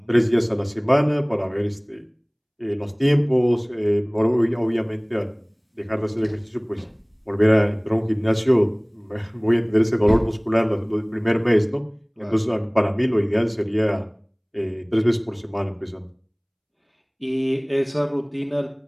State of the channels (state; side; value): identical; both; correlation 1.00